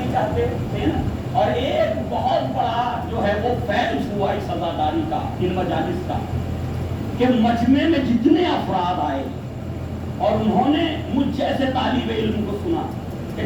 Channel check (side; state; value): both; identical; correlation 1.00